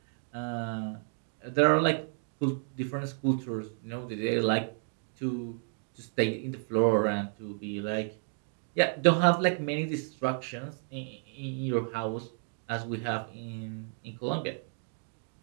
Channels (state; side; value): silent; left; 57 dB below the other